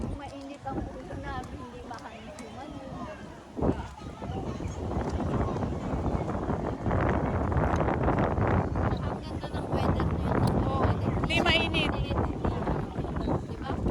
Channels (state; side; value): identical; both; correlation 1.00